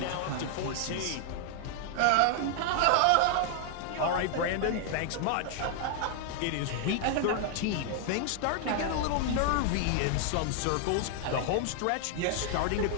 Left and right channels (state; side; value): different; both; correlation 0.00